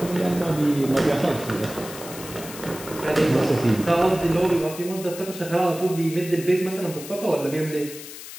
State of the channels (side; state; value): left; noise; hiss, 13 dB below the sound